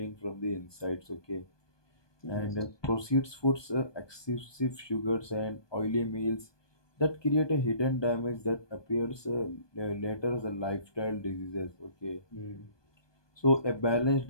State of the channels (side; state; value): right; late; 1.2 ms